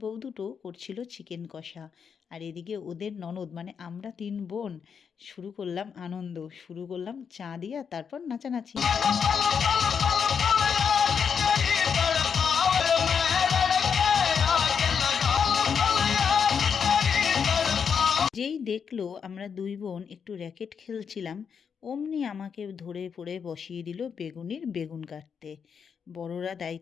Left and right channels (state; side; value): quieter; right; 6.7 dB